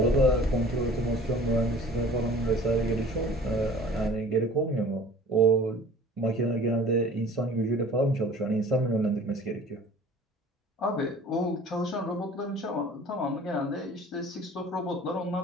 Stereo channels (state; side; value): normal; both; correlation 0.46